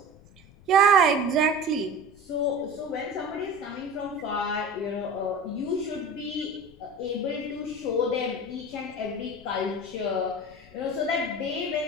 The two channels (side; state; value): left; noise; rumble, 24 dB below the sound